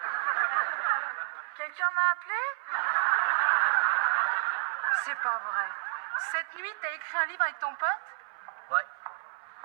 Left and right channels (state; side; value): silent; left; 58 dB below the other